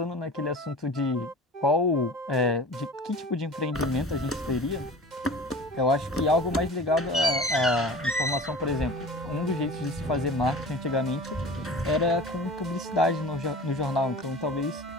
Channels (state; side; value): normal; both; correlation 0.38